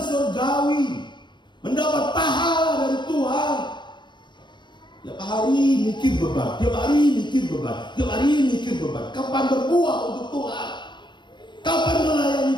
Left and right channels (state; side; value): late; right; 0.22 ms